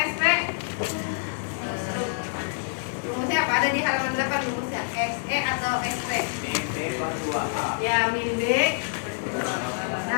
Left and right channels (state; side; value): silent; right; digital silence